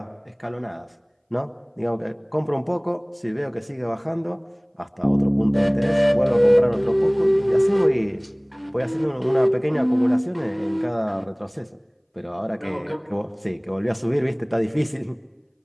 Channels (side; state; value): both; identical; correlation 1.00